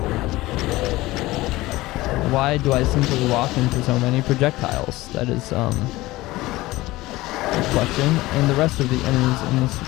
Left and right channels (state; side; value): quieter; right; 18.8 dB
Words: Why do I simply walk into so many projectiles? That is, a question. And the rest of the enemies in this